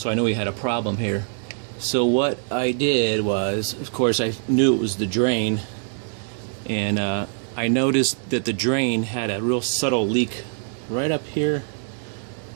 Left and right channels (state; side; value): silent; left; digital silence